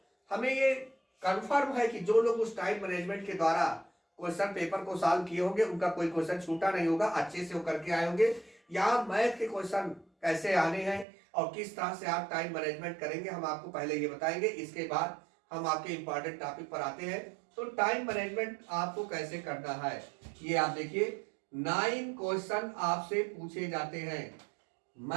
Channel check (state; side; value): drops out; left; at 11.1 s